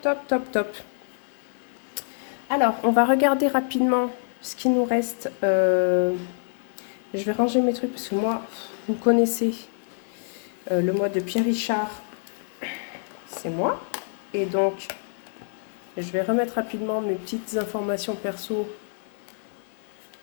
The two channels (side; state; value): right; silent; 55 dB below the other